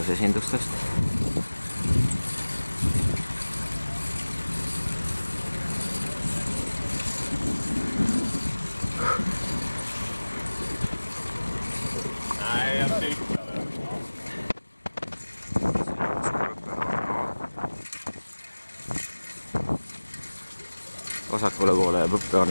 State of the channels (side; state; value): both; inverted; correlation -1.00